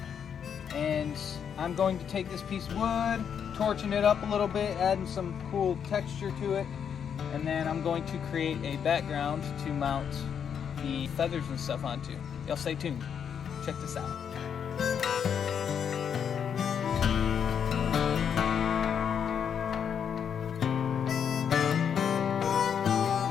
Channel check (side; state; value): right; quieter; 7.8 dB